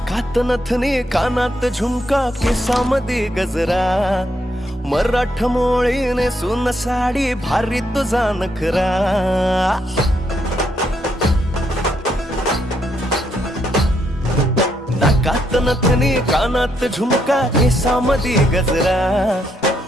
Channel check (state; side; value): normal; both; correlation 0.76